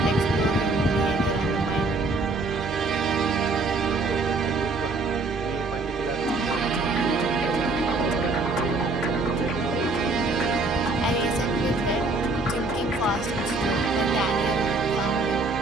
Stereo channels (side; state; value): left; quieter; 3.3 dB